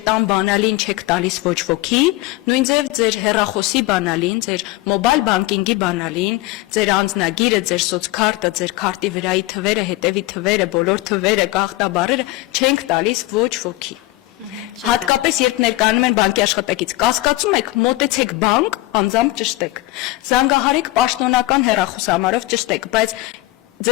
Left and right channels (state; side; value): quieter; right; 19.0 dB